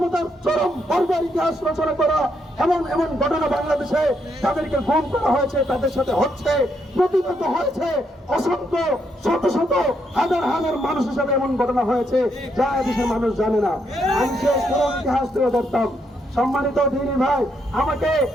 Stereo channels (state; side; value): normal; both; correlation 0.77